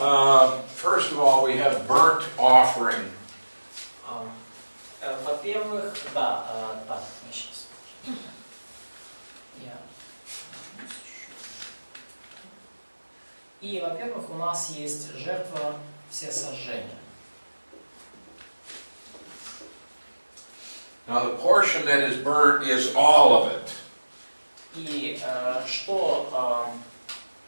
first of all, we have burnt offering. Во-первых, да, так, сейчас. И, во-первых, у нас есть жертва всесожжения. Now, the portion that is burnt is all of it. И что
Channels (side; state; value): both; inverted; correlation -1.00